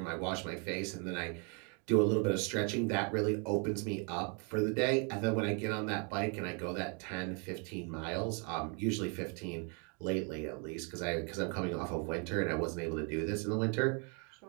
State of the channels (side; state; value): left; quieter; 36.5 dB